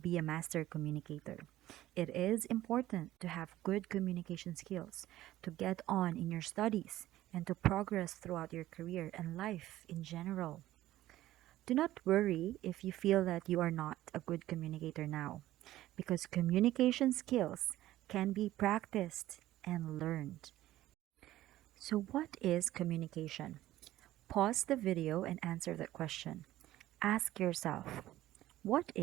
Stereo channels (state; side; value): quieter; left; 14.9 dB